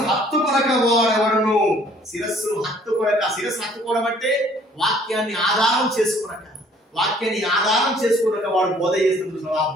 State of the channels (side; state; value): both; normal; correlation 0.58